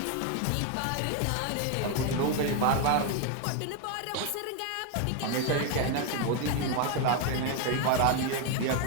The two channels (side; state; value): both; different; correlation 0.01